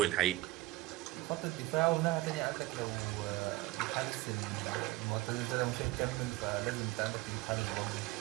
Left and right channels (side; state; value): left; quieter; 18.6 dB